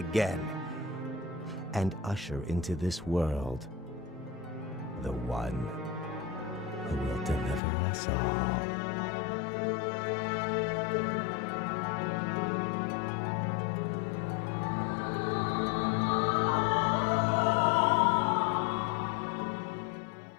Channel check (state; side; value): drops out; right; at 7.6 s